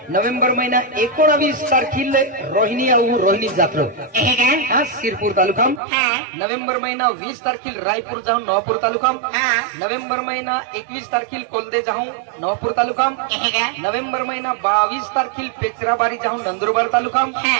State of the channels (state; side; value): drops out; left; at 5.8 s